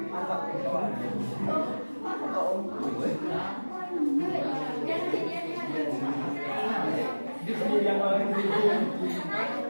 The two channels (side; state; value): both; inverted; correlation -1.00